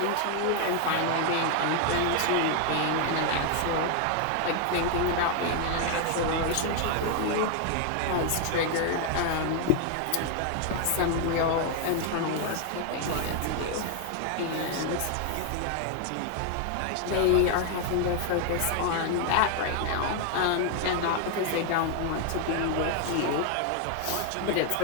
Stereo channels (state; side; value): different; both; correlation 0.00